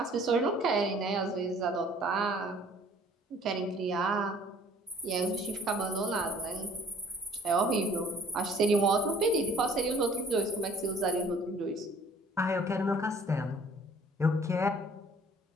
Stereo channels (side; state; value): both; normal; correlation 0.55